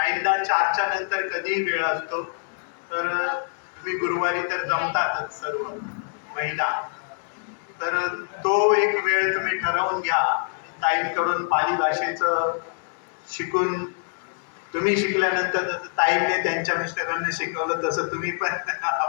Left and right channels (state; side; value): silent; right; digital silence